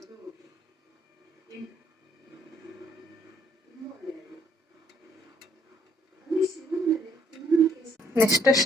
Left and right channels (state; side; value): normal; both; correlation 0.66